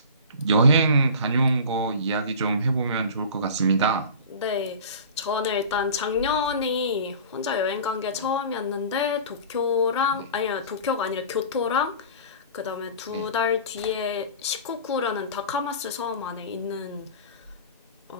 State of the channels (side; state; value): both; inverted; correlation -0.37